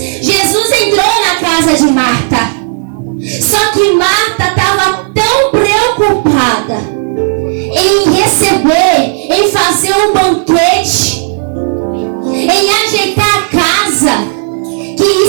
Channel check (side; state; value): left; silent; 66 dB below the other